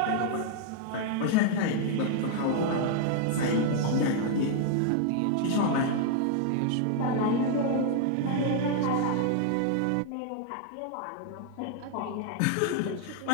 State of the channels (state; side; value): different; both; correlation 0.00